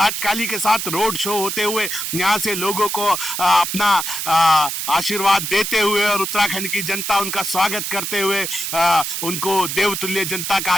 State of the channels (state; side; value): noise; right; hiss, 3 dB below the sound